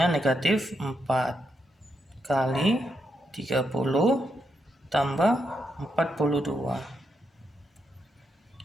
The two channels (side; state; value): both; normal; correlation 0.81